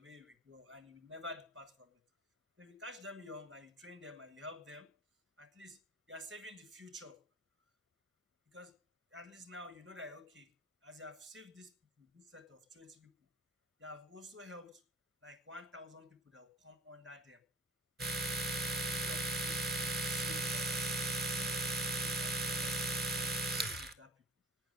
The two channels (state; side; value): normal; both; correlation 0.46